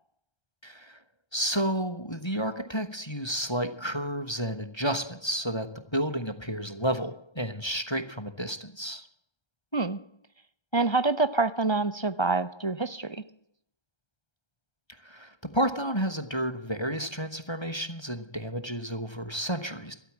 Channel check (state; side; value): late; right; 1.3 ms